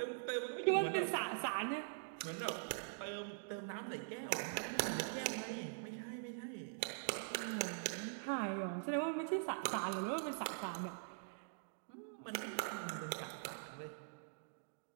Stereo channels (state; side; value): silent; left; digital silence